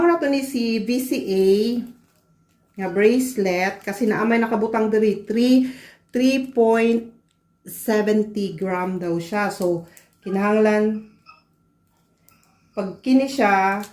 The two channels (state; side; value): identical; both; correlation 1.00